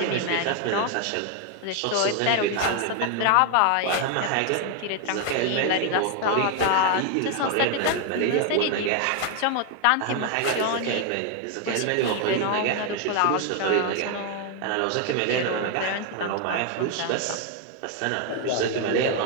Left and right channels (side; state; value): both; different; correlation 0.01